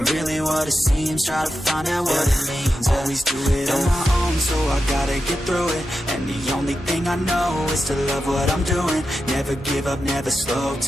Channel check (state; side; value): normal; both; correlation 0.89